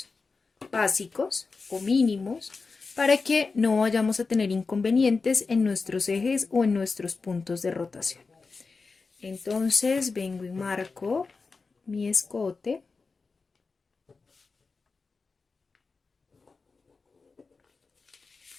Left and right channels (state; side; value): quieter; right; 4.3 dB